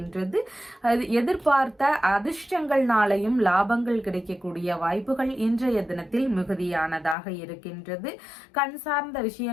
எதிர்பார்த்த அதிர்ஷ்டங்கள்னாலையும் லாபங்கள் கிடைக்கக்கூடிய வாய்ப்புகள் இன்றைய தினத்தில் மிகுதியானதாக இருக்கின்றது. கண் சார்ந்த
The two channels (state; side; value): drops out; right; at 7.2 s